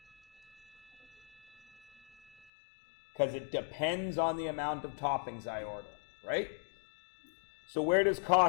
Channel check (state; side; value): drops out; right; at 2.5 s